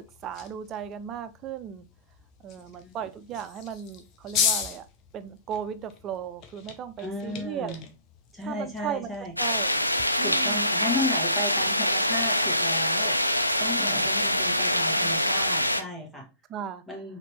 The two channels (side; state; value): both; inverted; correlation -0.57